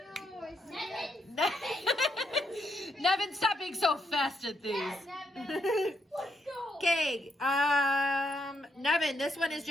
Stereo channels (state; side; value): normal; both; correlation 0.78